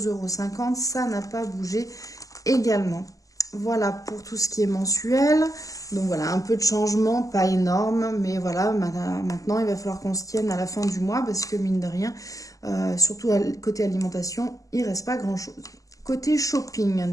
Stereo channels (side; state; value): right; late; 0.17 ms